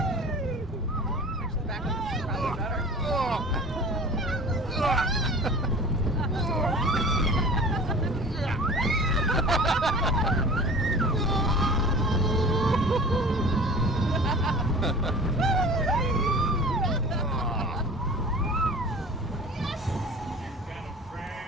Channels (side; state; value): both; normal; correlation 0.40